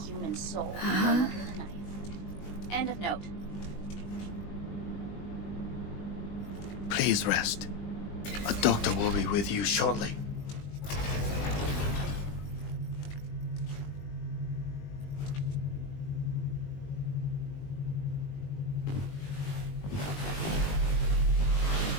Human soul. Under the knife. End of note. Please rest. A doctor will be with you shortly.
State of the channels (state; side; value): late; right; 20 ms